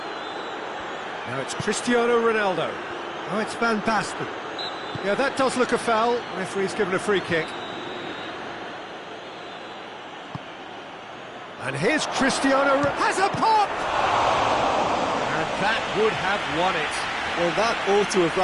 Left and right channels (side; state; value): both; identical; correlation 1.00